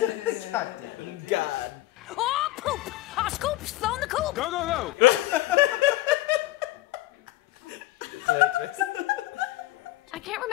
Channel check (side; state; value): right; quieter; 16.7 dB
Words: God. Oh, poop! Our scoop's flown the coop! Go, go, go! I can't